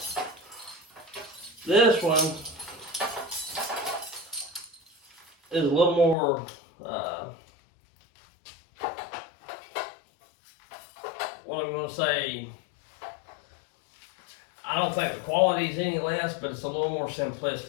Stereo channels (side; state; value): right; drops out; at 6.2 s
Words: This one is a little more, what I'm going to say, I don't think the quality is any less, but it's a little more